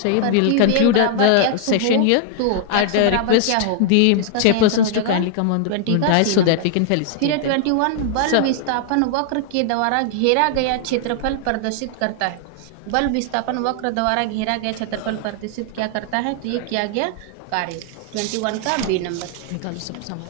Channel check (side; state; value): both; different; correlation 0.00